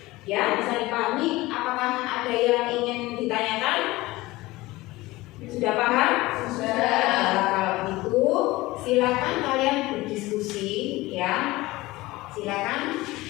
Ya, bisa dipahami? Apakah ada yang ingin ditanyakan? Sudah paham? Sudah. Nah, kalau begitu silakan kalian berdiskusi ya. Silakan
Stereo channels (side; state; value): right; quieter; 19.5 dB